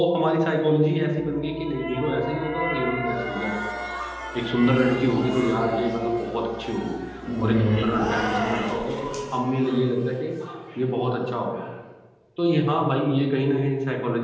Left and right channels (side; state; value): both; identical; correlation 1.00